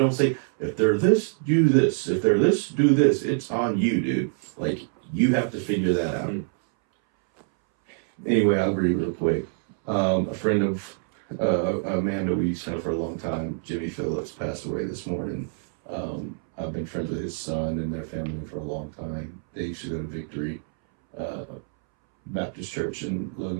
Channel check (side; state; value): left; silent; 61 dB below the other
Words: say if they're this, do this. If they're this, do this. It's on you, dude. Like you have to figure that out. Anyway, I'll read real quick. A friend of Amanda we used to know for a long time, Jimmy Phillips, passed away this morning. I've been friends with his son and their family for a long time. They used to go to Victory Baptist Church in